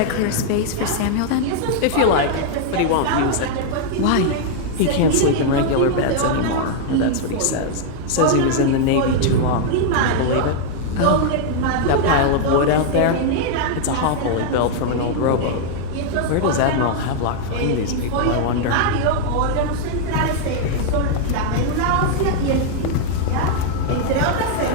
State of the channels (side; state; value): both; different; correlation -0.01